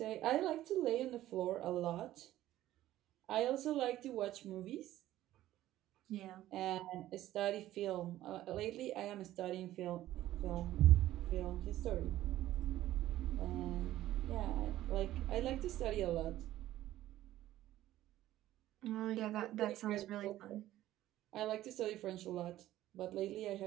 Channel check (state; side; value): quieter; left; 14.2 dB